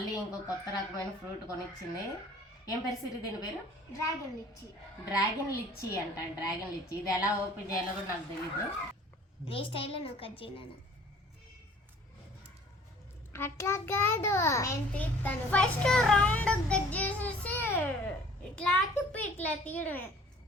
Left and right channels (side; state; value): both; normal; correlation 0.52